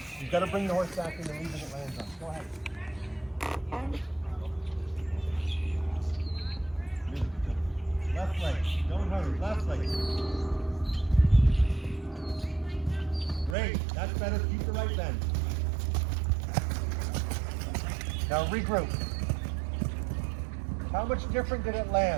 You've got to bring the horse back in the lead that it lands on. Go ahead. Left leg. Don't hurry. Left leg. Great. That's better. Keep the right bend. Now regroup. How much different did it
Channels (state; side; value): drops out; left; at 13.6 s